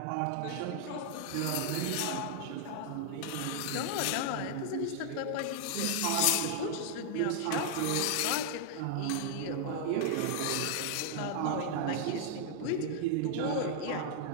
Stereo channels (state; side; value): different; both; correlation 0.00